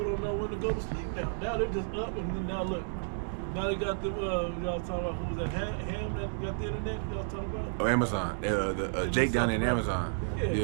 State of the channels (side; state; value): left; silent; digital silence